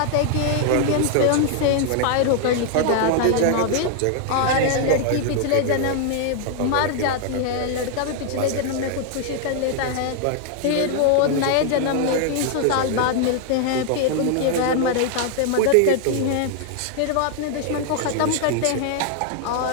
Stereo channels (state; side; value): different; both; correlation 0.00